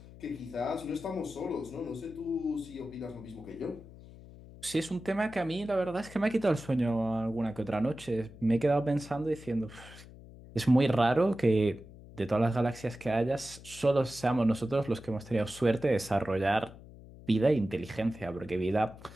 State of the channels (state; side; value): noise; left; hum, 18 dB below the sound